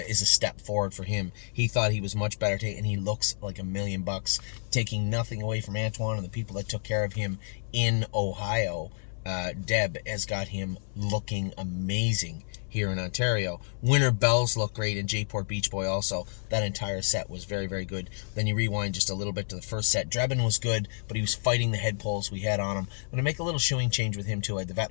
step forward for him. He thought he was much better today, and he looks like $1,000,000, taking nothing away from Antoine and the people that took care of him in Ohio. Deb has got him looking amazing here in Ontario. Winter Bells look great, and Jayport Beach Boy also. That entire set was very, very good. Then you rewind just a little bit to the first set. Drebin was good, but he was fighting the head pulls we had on him. I'm going to make a little shoeing change with him too. I had the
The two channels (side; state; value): right; silent; 58 dB below the other